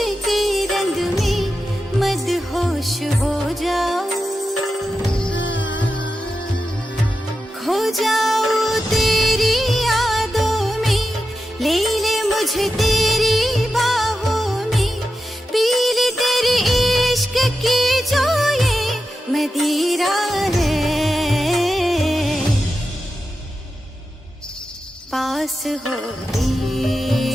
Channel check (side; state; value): both; normal; correlation 0.90